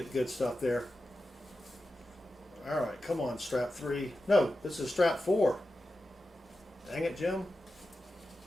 good stuff there. All right, come on, strap 3. No, this is strap 4. Dang it, Jim.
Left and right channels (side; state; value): both; normal; correlation 0.92